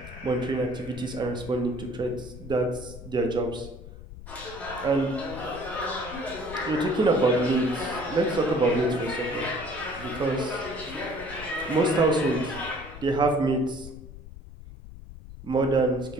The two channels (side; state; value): left; noise; rumble, 14 dB below the sound